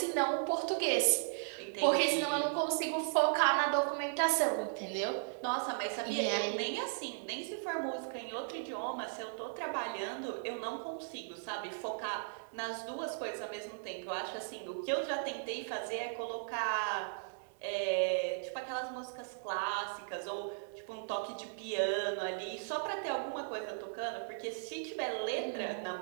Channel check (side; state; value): left; silent; digital silence